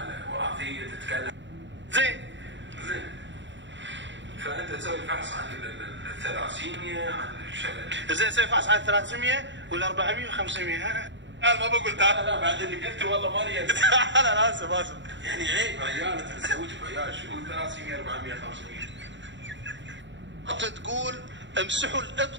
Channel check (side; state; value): left; late; 0.53 ms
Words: وراثيه، تتكلم زين. فانت تسوي الفحص عن الثلاسيميا، عن زين سوي فحص عن 300 ولا 400 و500. انا ما بقول تعال. لا بعد اللي قلته والله ماني انا اسف يعني عيب عيال انت تزوج بعيال شو 300 400 500. تقول امسحوا